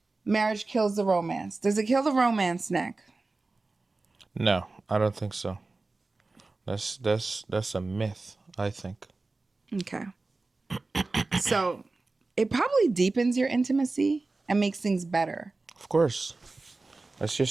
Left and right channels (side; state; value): left; quieter; 3.5 dB